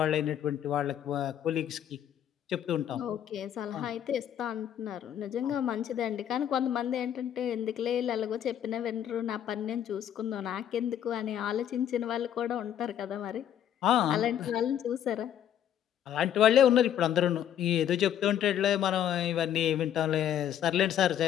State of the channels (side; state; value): right; quieter; 10.2 dB